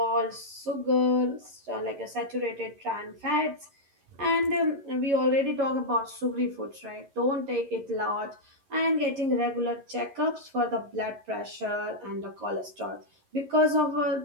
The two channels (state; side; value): late; left; 11 ms